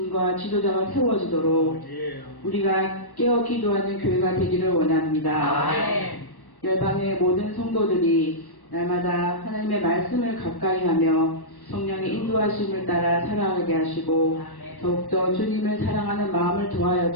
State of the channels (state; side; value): late; right; 1.1 ms